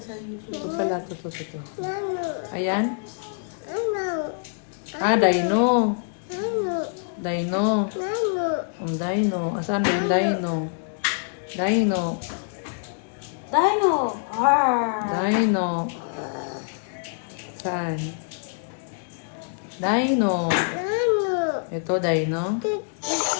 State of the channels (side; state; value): right; silent; digital silence